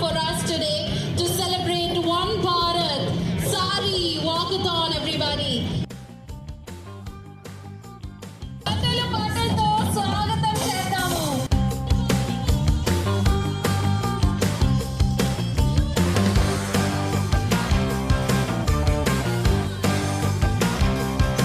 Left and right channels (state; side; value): identical; both; correlation 1.00